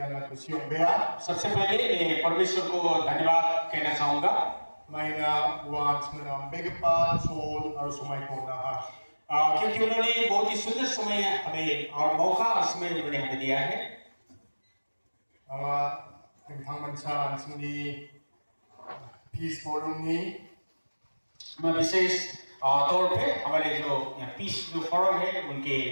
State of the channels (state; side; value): inverted; both; correlation -1.00